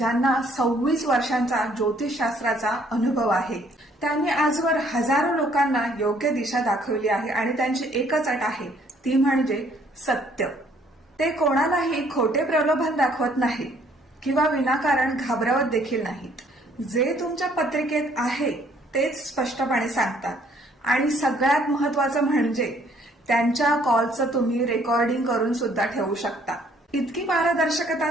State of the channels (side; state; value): both; normal; correlation 0.63